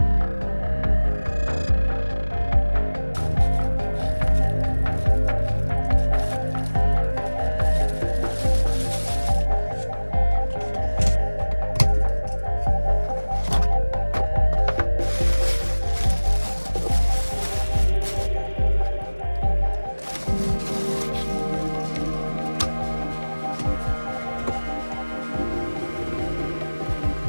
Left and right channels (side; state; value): both; inverted; correlation -1.00